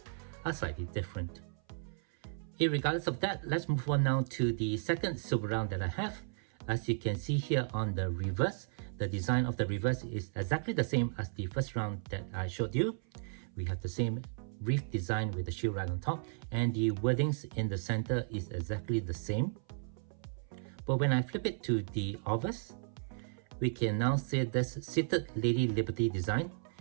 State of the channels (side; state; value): left; silent; 55 dB below the other